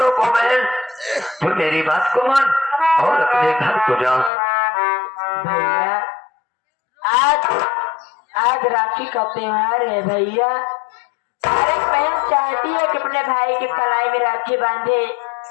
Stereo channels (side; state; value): right; drops out; at 4.3 s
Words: को बहन, तू मेरी बात को मान और अपने घर को जा। भैया आज राखी का त्योहार है भैया। हर एक बहन चाहती है कि अपने भाई के कलाई में राखी बांधे